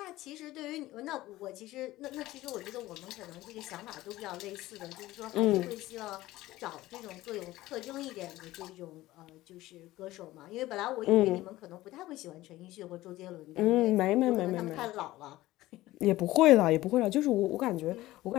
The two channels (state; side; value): quieter; right; 16.9 dB